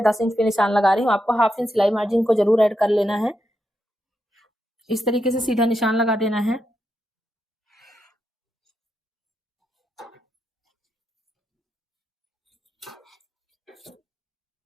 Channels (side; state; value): both; normal; correlation 0.84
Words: 10 इंच पे निशान लगा रही हूँ। आपको हाफ इंच सिलाई मार्जिन को जरूर ऐड कर लेना है। इस तरीके से सीधा निशान लगा देना है।